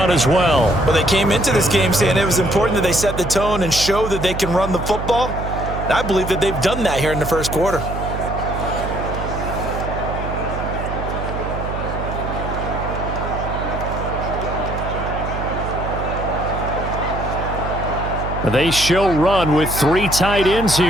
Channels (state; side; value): noise; right; hum, 5 dB below the sound